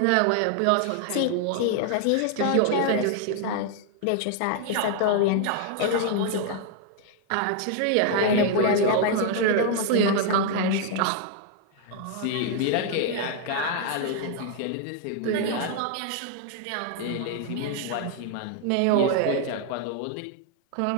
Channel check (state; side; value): different; both; correlation 0.00